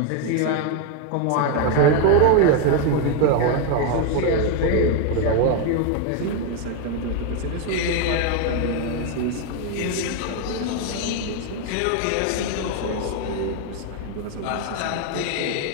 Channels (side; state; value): both; different; correlation 0.01